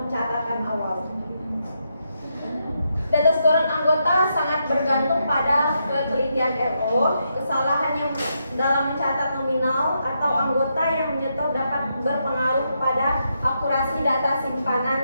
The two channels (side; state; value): both; inverted; correlation -0.81